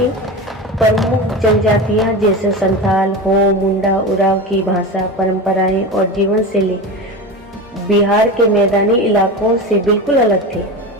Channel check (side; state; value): both; normal; correlation 0.25